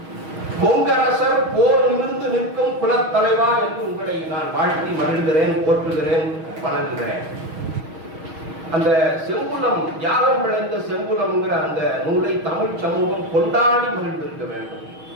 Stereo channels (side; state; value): left; late; 6.3 ms